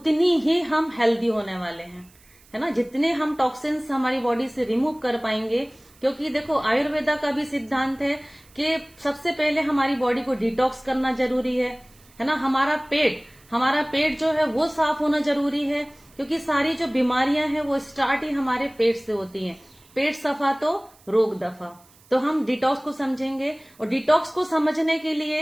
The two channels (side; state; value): right; noise; hiss, 28 dB below the sound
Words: ही हम हेल्दी होने वाले हैं, है ना। जितने हम टॉक्सिन्स हमारी बॉडी से रिमूव कर पाएंगे, क्योंकि देखो आयुर्वेदा का भी सिद्धांत है कि सबसे पहले हमारी बॉडी को डिटॉक्स करना जरूरी है ना। हमारा पेट जो है वो साफ होना जरूरी है, क्योंकि सारी जो बीमारियां हैं वो स्टार्ट ही हमारे पेट से होती हैं। पेट सफा तो रोग दफा। तो हम डिटॉक्स को समझेंगे और डिटॉक्स को समझने के लिए